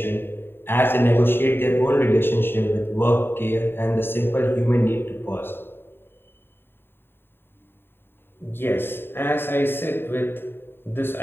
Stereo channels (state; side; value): late; right; 0.11 ms